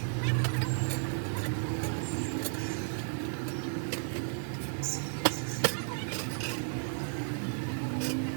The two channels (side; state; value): left; silent; digital silence